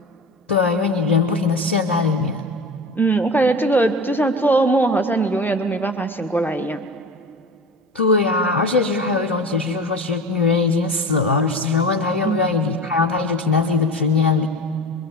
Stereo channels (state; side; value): normal; both; correlation 0.33